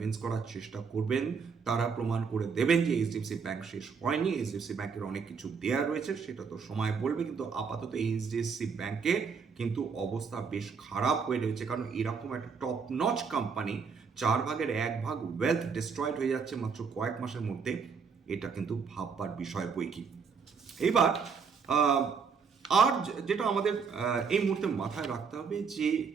করার চেষ্টা করবেন, তারা প্রমাণ করে দেবেন যে এইচডিএফসি ব্যাংক শেষ হয়নি, এইচডিএফসি ব্যাংকের অনেক কিছু দেয়া রয়েছে, সেটা তো সময় বলবে। কিন্তু আপাতত এইচডিএফসি ব্যাংকে কিন্তু অবস্থা বেশ খারাপ হয়ে রয়েছে, কারণ এরকম একটা top notch company 1/4 wealth destroyed হয়ে যাচ্ছে মাত্র কয়েক মাসের মধ্যে, এটা কিন্তু ভাববার বিষয় বই কি। এবার আর যেটা আমাদের এই মুহূর্তে মাথায় রাখতে হবে যে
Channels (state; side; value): quieter; left; 5.7 dB